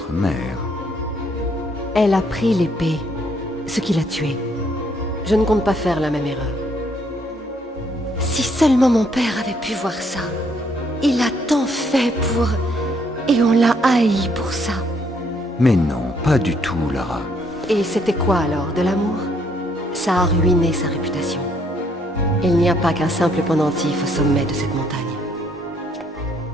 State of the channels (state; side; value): normal; both; correlation 0.69